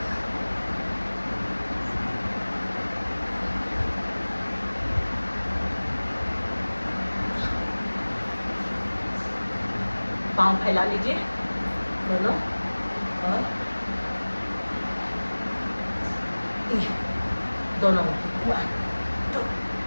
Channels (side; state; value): both; inverted; correlation -1.00